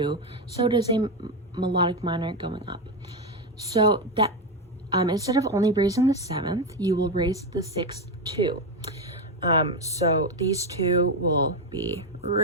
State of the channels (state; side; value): normal; both; correlation 0.10